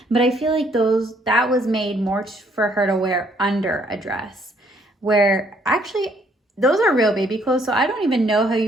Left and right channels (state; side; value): normal; both; correlation 0.66